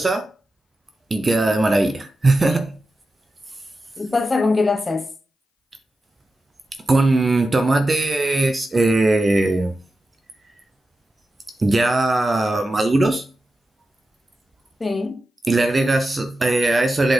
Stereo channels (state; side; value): normal; both; correlation 0.92